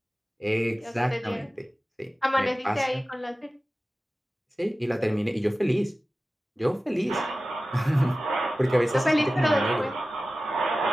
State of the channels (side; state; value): both; normal; correlation 0.96